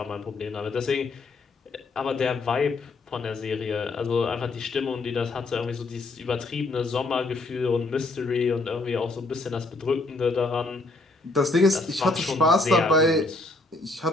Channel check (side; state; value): right; quieter; 3.2 dB